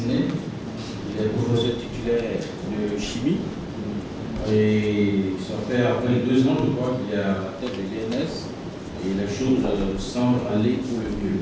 Il est professeur titulaire de chimie. Et ça fait à peine 2 ans, je crois, qu'il est à la tête de l'INS et les choses semblent aller pour le mieux.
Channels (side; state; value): both; identical; correlation 1.00